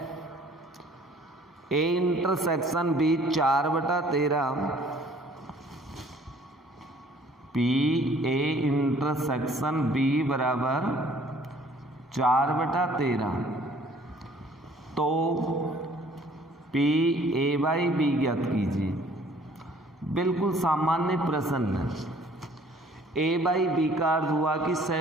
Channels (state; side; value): normal; both; correlation 0.56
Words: A intersection B 4/13, PA intersection B बराबर 4/13, तो PA/B ज्ञात कीजिए। बिल्कुल सामान्य प्रश्न है। ए बाई बी का अर्थ हुआ कि